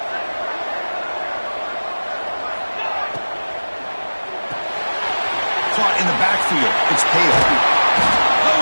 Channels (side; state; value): both; inverted; correlation -1.00